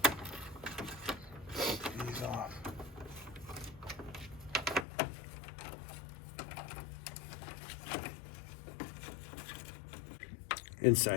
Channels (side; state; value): right; drops out; at 4.9 s